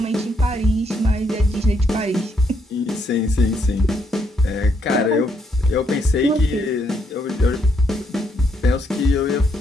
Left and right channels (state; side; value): normal; both; correlation 0.74